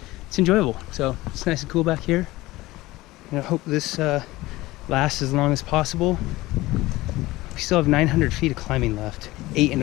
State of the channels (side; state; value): right; quieter; 18.8 dB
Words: enjoyable. So it's nice and cool back here, and I hope this lasts as long as possible. We still have 900 feet of climbing left,